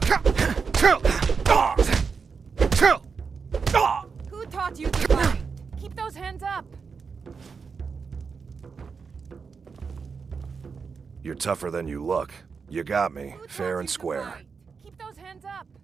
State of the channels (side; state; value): left; quieter; 5.4 dB